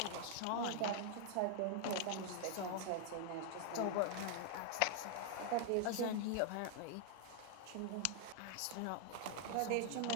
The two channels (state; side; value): different; both; correlation 0.00